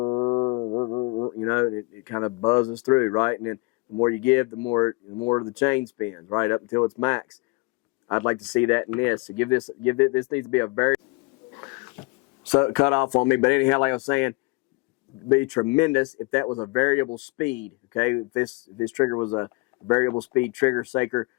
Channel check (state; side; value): quieter; right; 27.7 dB